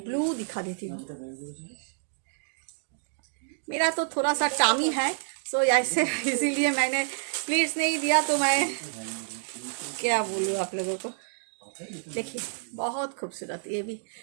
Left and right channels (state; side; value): silent; left; digital silence